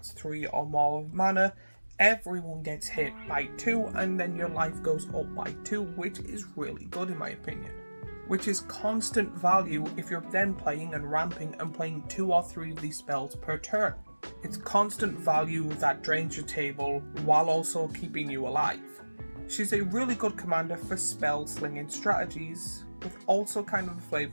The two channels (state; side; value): inverted; both; correlation -1.00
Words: 3 or more mana, everyone gets hit by 2 and then your life goes up by 2, which is really good in my opinion. Which is constant value if you're then playing and ramping and playing 2 or 3 of these spells per turn. It's constant value that drains your table while also keeping you alive. She's a really good commander for spell slinging strategies, with also kind of a